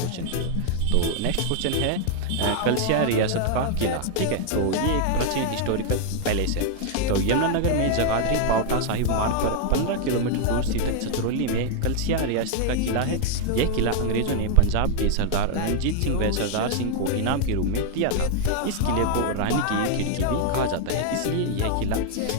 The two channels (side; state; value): both; different; correlation 0.00